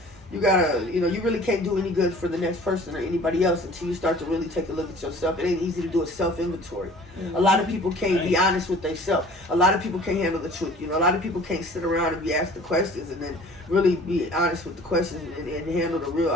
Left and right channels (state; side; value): normal; both; correlation 0.48